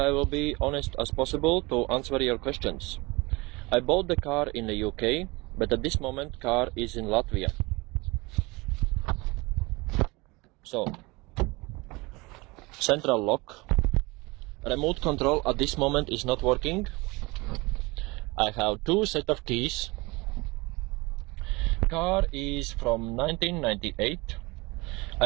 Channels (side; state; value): left; quieter; 24.4 dB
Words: will be honest as possible to answer your questions. I bought the car in the UK, but at this moment car is in Latvia. So, central lock. Remote control at this moment is not working. I have two sets of keys. Car is from 1998.